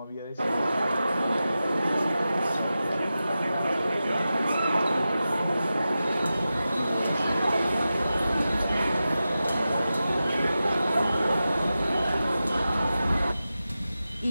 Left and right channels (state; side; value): inverted; both; correlation -0.93